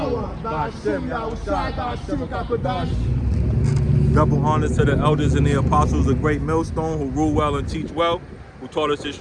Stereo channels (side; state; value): both; identical; correlation 1.00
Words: Ba'ashem, Yahushua, Ba'ashem, Kakadash. Double honors to the elders and the apostles of Great Millstone who rule well and teach well, who taught us this